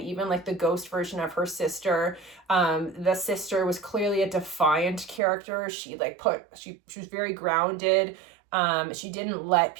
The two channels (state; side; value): drops out; left; at 5.2 s